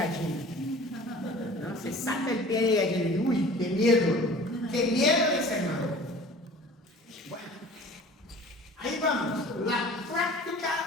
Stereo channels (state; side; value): normal; both; correlation 0.44